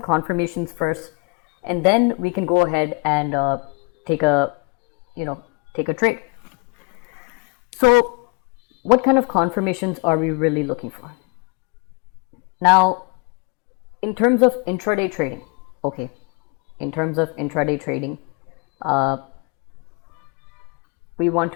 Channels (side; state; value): right; quieter; 31.8 dB